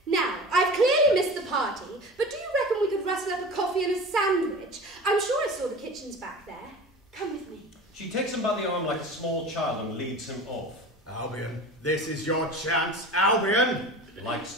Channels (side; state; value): both; normal; correlation 0.35